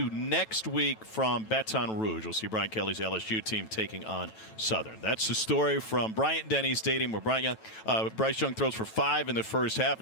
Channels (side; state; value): right; late; 9.1 ms